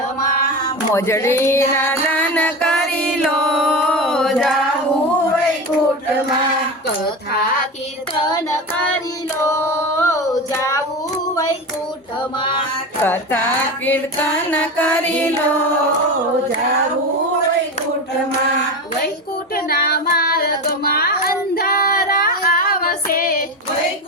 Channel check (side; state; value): both; normal; correlation 0.23